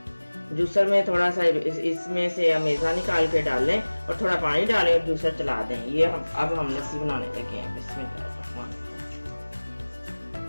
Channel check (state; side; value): inverted; both; correlation -1.00